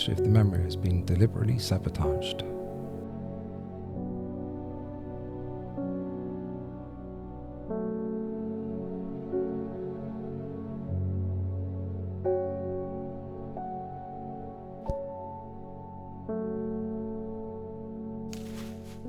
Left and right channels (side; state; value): both; identical; correlation 1.00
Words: if the memory has been deliberately sabotaged.